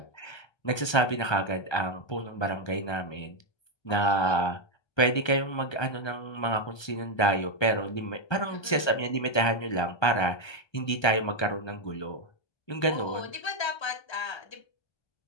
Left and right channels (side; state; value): right; late; 1.3 ms